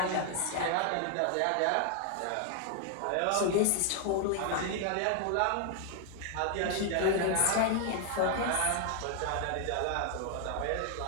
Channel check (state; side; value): different; both; correlation 0.00